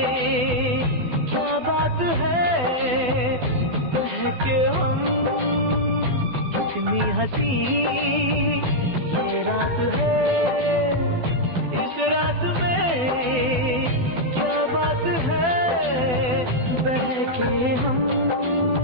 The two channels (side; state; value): left; late; 12 ms